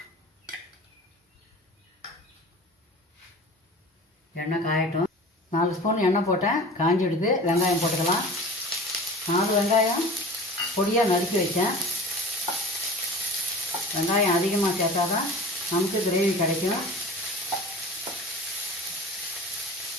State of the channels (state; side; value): normal; both; correlation 0.39